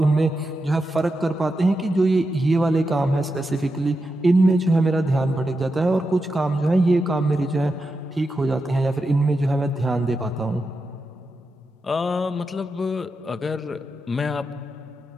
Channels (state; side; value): normal; both; correlation 0.88